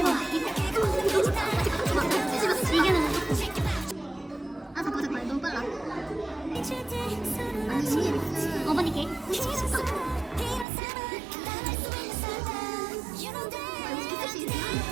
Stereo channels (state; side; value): drops out; left; at 10.7 s